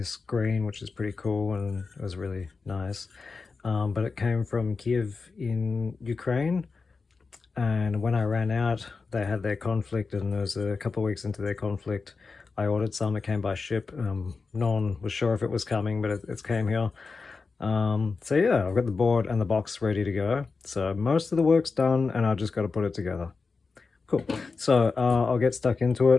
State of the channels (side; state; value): right; quieter; 4.4 dB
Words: green, which is pretty cool and it was really nice. But it came from Kiev in Ukraine, and when I ran out, they had their conflict, and it was a couple of weeks into their conflict. I ordered some, it came by ship. No one was sure if it was coming, but it came here. So yeah, I've got the board and the box ready to go. So most of the work's done and I've just got to put it together. Cool. So I'll get stuck into